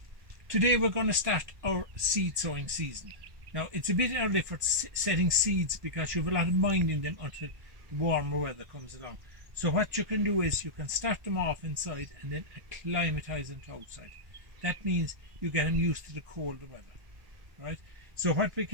today we're going to start our seed sowing season. Now it's a bit early for setting seeds because you have a lot of minding them until the warmer weather comes along. So what you can do is you can start them off inside and then acclimatise them to outside. That means you get them used to the colder weather, right? So what we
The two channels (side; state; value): left; late; 1.7 ms